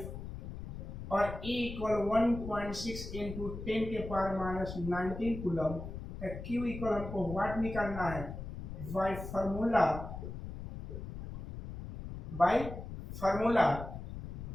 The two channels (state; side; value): noise; left; rumble, 9 dB below the sound